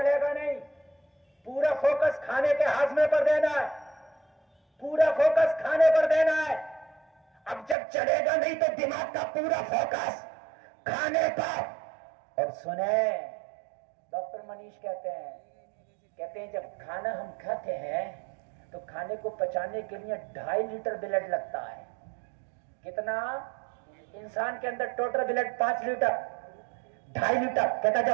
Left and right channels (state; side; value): drops out; left; at 7.8 s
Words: گا نہیں. پورا فوکس کھانے کے ہاضمے پر دینا ہے, پورا فوکس کھانے پر دینا ہے. اب جب چلے گا نہیں تو دماغ کا پورا فوکس کھانے پر. اور سنیں, ڈاکٹر منیش کہتے ہیں جب کھانا ہم کھاتے ہیں تو کھانے کو پچانے کے لیے 2.5 لیٹر بلڈ لگتا ہے. کتنا؟ انسان کے اندر ٹوٹل بلڈ 5 لیٹر, 2.5 لیٹر. کہتا